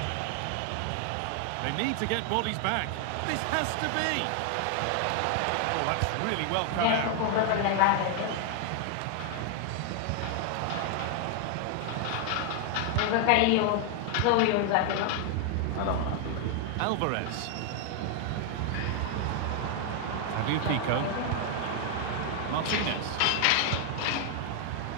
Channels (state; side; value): different; both; correlation 0.00